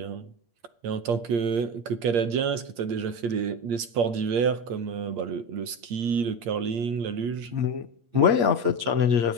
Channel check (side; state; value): left; late; 8.6 ms